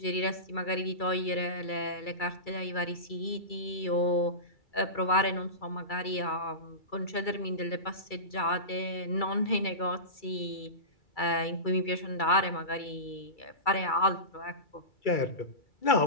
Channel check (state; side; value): late; right; 2.3 ms